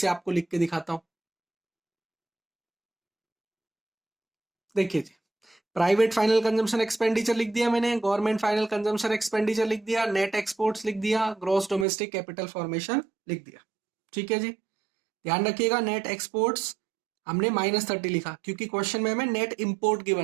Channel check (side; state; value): left; drops out; at 11.9 s